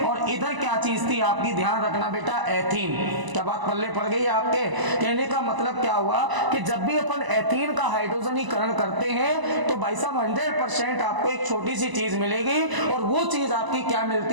और इधर क्या चीज थी आपकी, ध्यान रखना बेटा एथीन। क्या बात पल्ले पड़ गई आपके, कहने का मतलब क्या हुआ कि जब भी अपन एथीन का हाइड्रोजनीकरण करते हैं तो भाई साहब 100% आपको एक छोटी सी चीज मिलेगी, और वो चीज आपकी क्या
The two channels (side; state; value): left; late; 1.0 ms